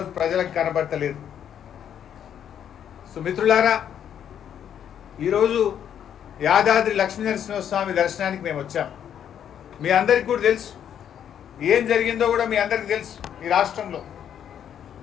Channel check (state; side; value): quieter; right; 9.3 dB